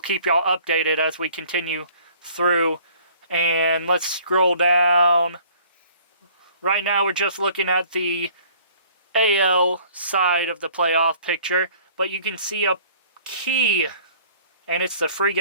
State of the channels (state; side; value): inverted; both; correlation -0.54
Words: keep y'all updated as we continue through. And let's scroll down. Right now we're just looking at the AL side of the playoff picture. But you can see a key, and it's the free